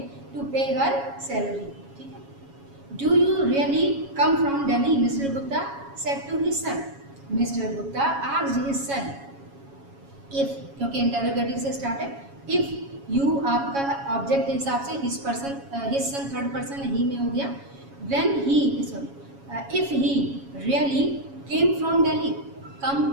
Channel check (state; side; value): late; left; 7.2 ms